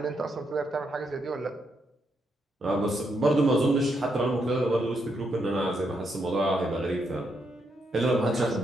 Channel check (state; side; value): normal; both; correlation 0.79